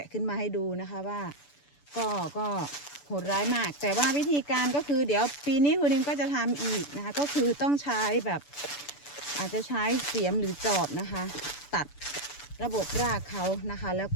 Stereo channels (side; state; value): right; late; 6.9 ms